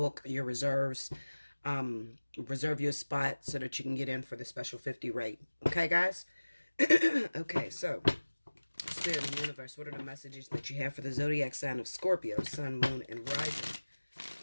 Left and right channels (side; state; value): both; inverted; correlation -1.00